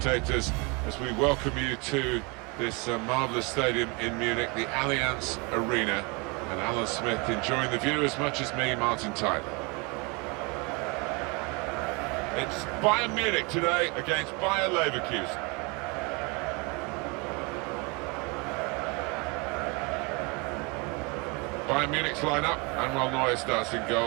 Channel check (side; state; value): left; quieter; 29.4 dB